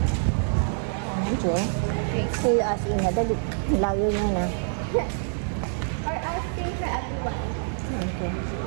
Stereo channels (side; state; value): left; silent; digital silence